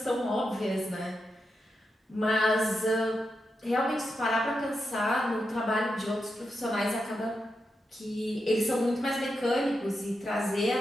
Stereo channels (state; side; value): normal; both; correlation 0.86